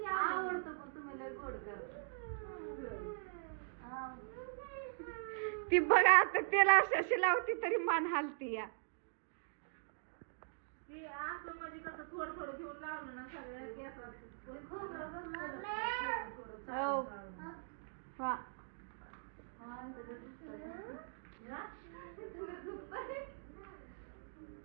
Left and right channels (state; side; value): silent; left; digital silence